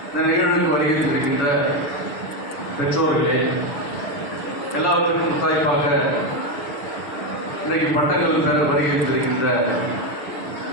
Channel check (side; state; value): right; late; 6.8 ms